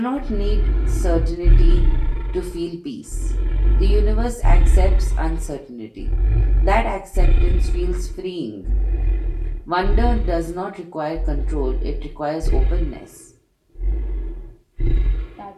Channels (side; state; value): both; identical; correlation 1.00